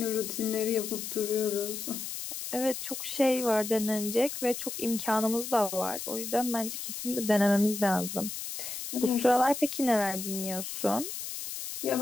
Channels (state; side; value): noise; left; hiss, 7 dB below the sound